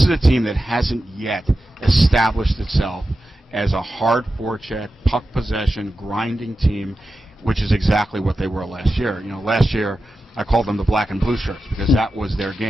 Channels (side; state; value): both; normal; correlation 0.92